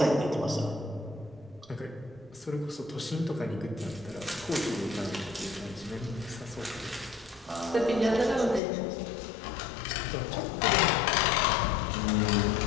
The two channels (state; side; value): drops out; right; at 8.6 s